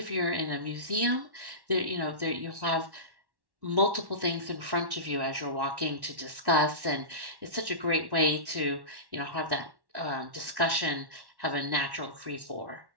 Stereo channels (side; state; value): left; late; 1.1 ms